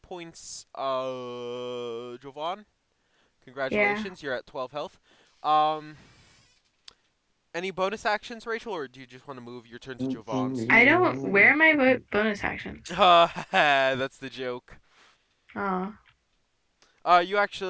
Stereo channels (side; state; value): both; identical; correlation 1.00